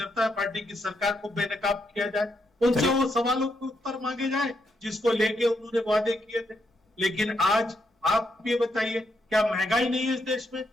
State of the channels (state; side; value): normal; both; correlation 0.79